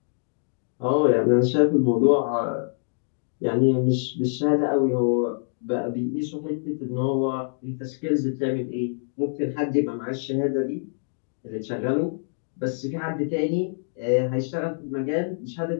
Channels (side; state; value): right; silent; digital silence